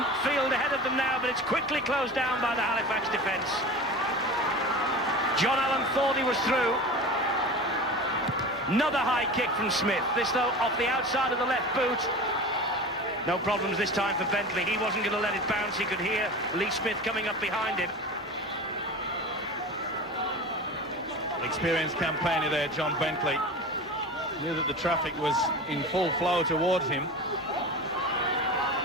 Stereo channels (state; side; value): normal; both; correlation 0.32